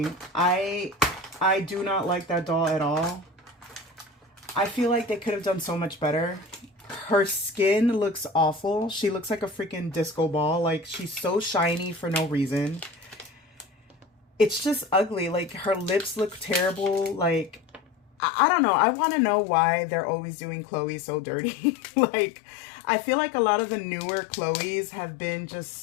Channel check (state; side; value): drops out; right; at 18.1 s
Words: I do not like that doll at all. I feel like they could have done so much better. Her skin looks awful. She looks like a freaking disco ball. Like, she's so shiny for no reason. It's just ugly. Like, her lips look terrible. Like, I don't know. I want to know why they're always doing Chloe so dirty. Like, I feel like a lot of the newer Chloes have been